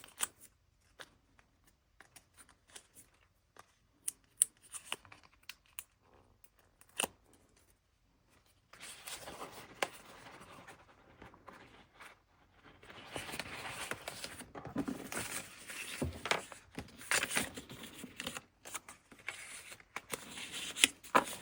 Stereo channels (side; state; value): both; identical; correlation 1.00